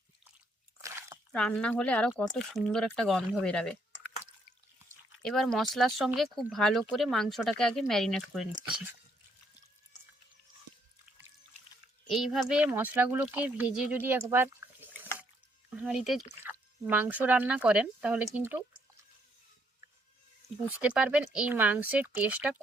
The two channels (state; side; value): normal; both; correlation 0.71